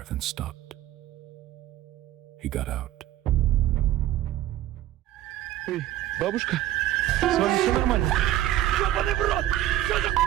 then stopped. He got out. Эй, бабушка, с вами все нормально? Ёбаный в рот! Что за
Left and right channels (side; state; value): left; quieter; 13.7 dB